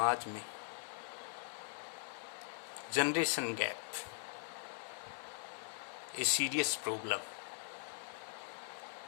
में. Generation gap a serious problem.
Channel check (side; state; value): right; silent; digital silence